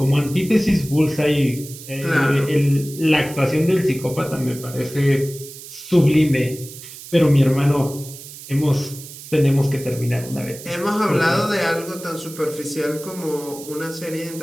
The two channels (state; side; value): noise; right; hiss, 15 dB below the sound